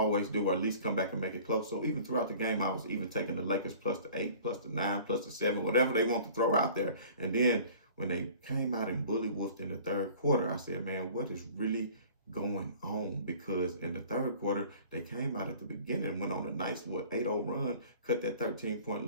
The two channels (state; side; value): inverted; both; correlation -0.47